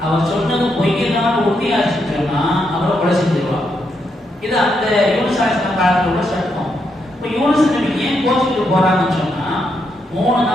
அவர் சொன்னது பொய்யதான் உறுதியாச்சு சொன்னா அவரை கொலை செஞ்சிருவாங்க. இது அந்த யூனுஸ் அலைஹிஸ்ஸலாம் காலத்துல உள்ள சட்டம். இப்போ யூனுஸ் நபி ஏன் கோச்சிட்டு போறாங்கன்னு சொன்னா, 3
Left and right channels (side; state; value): both; normal; correlation 0.80